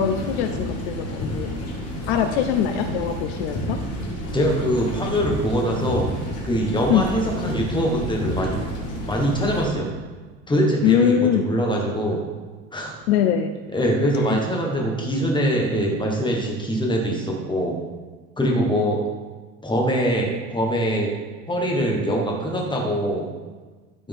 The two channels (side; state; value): both; normal; correlation 0.40